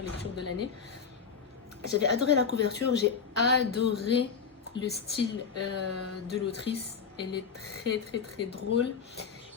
lectures de l'année. J'avais adoré la couverture, j'ai adoré le style de l'autrice. Elle est très très très drôle.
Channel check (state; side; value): quieter; right; 6.2 dB